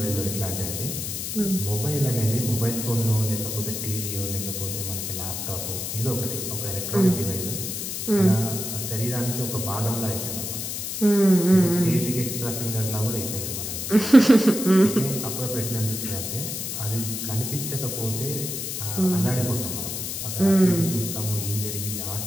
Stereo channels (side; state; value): left; noise; hiss, 4 dB below the sound